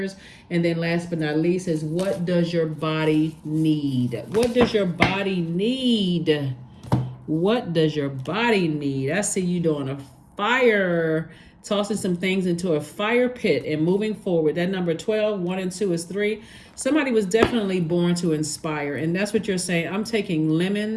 And then last but not least is, what does your body need? What does your body need? What does your body need? I see you doing a fire, tossing some things into a fire pit and moving forward. That number 12, 1 and 2 is 3. Somebody was definitely born to inspire. And that's what you're saying. I'm taking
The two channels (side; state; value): both; identical; correlation 1.00